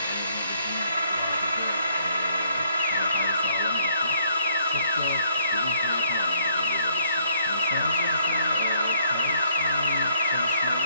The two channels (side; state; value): both; inverted; correlation -0.66